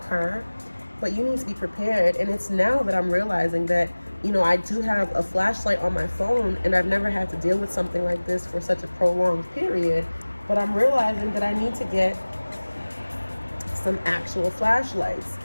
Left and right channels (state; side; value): inverted; both; correlation -1.00